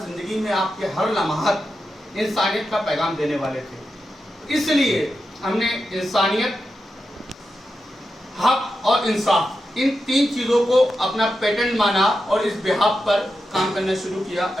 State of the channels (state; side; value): normal; both; correlation 0.89